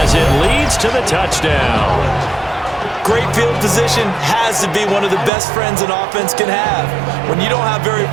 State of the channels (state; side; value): drops out; left; at 5.3 s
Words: it leads to the touchdown. Great field position has to be one of the best friends an offense can have. When you don't have very